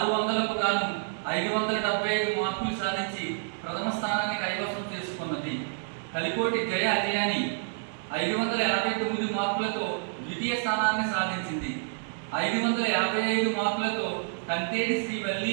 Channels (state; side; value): silent; left; 59 dB below the other